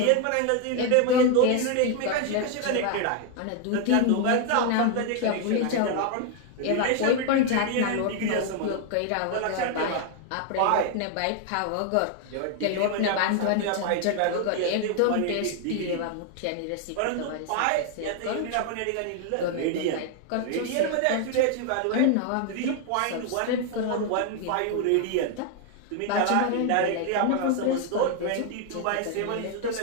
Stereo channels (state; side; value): different; both; correlation 0.01